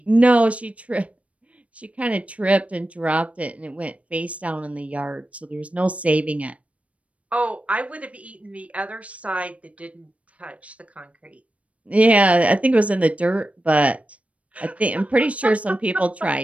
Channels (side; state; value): left; late; 0.065 ms